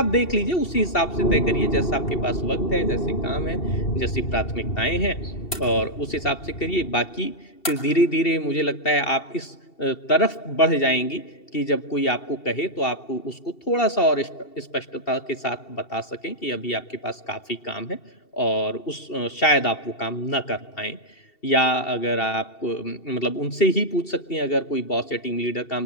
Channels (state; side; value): late; right; 2.7 ms